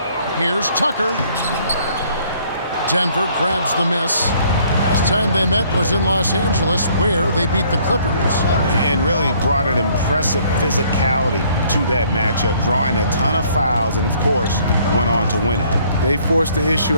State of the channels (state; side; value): inverted; both; correlation -0.61